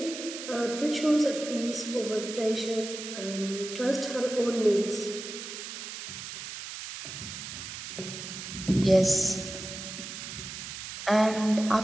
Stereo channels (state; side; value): noise; right; hiss, 9 dB below the sound